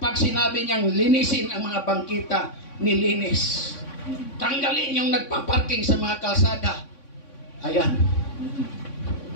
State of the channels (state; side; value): late; right; 3.6 ms